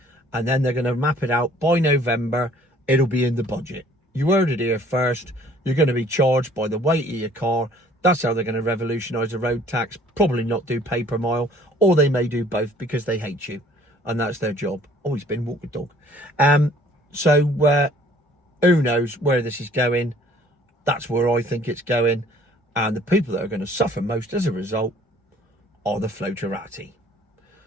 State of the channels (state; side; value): normal; both; correlation 0.55